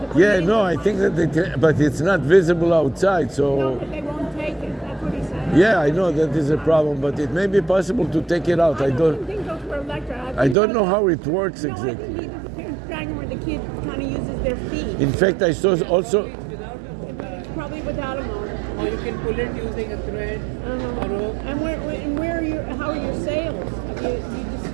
to put Yeah, it in no, the I car. think that they can, but it's not visible outside. No, So but they won't take it. That's what he said. yeah, I know that is a problem, but it may be possible to take it out. I don't. think those were electric. I don't know how it works No, I exactly. think either the parents drag them or the kid kind of uses their feet. In fact, I saw also. It's without a motor. Probably without a motor. Or you can pull it using a thread, a rope. And where are your, how are your sales? You just,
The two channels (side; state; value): left; drops out; at 10.6 s